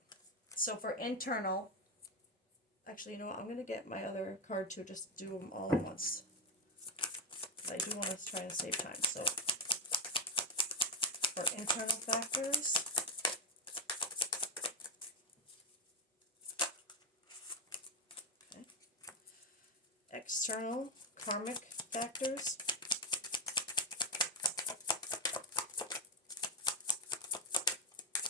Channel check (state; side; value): normal; both; correlation 0.08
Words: So for internal, actually, you know what? I'm going to get my other card to just do them all at once. I do want to try and save time. So for internal factors, okay. External karmic factors.